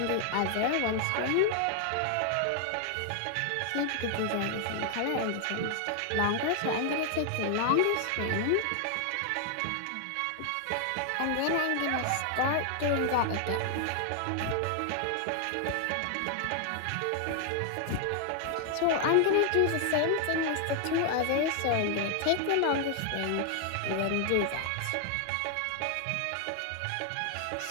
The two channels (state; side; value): different; both; correlation 0.00